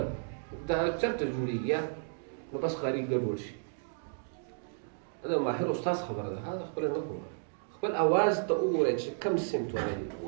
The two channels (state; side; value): silent; left; digital silence